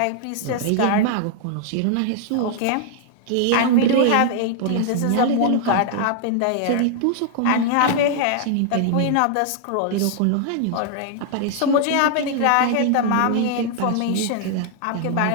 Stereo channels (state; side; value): different; both; correlation 0.00